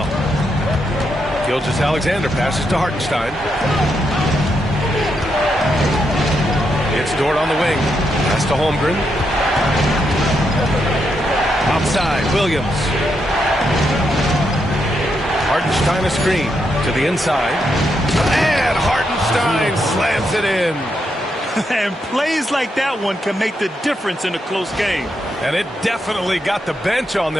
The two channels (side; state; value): both; normal; correlation 0.81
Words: Gilgeous-Alexander passes to Hartenstein. It's Dort on the wing. Pass to Holmgren. Outside, Williams. Hartenstein a screen to the inside. And Hartenstein slams it in. And plays like that one can make the difference in a close game. And it definitely got the bench on